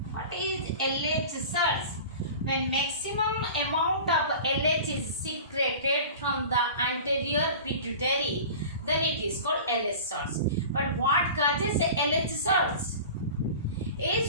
What is LH surge? When maximum amount of LH is secreted from the anterior pituitary, then it is called LH surge. But what causes LH surge?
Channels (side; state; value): both; inverted; correlation -0.37